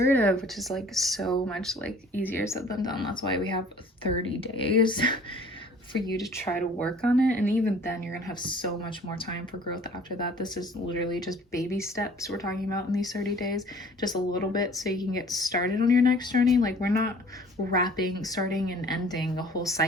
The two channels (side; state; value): both; normal; correlation 0.51